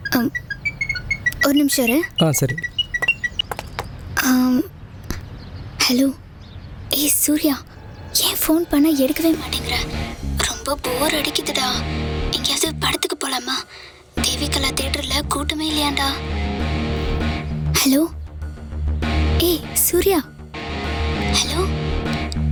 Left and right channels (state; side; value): identical; both; correlation 1.00